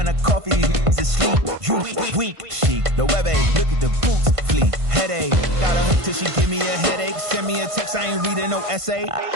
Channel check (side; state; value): left; late; 1.5 ms